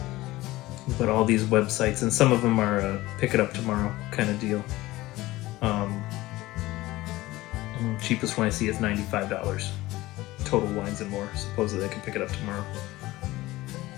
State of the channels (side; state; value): right; quieter; 18.2 dB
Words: but all these websites, and some of them are pick it up tomorrow kind of deal. Cheapest one I see is $95. Total Wines and More. Supposedly I can pick it up tomorrow.